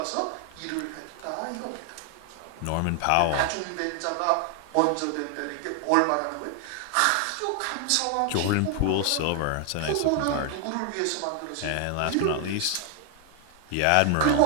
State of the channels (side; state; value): both; different; correlation 0.00